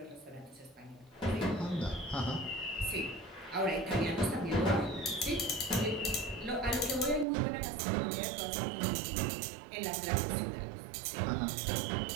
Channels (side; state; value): left; drops out; at 7.2 s